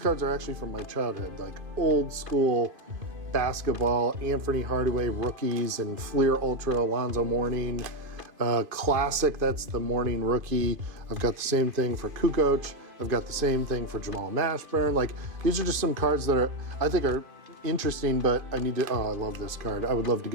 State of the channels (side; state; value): left; late; 2.5 ms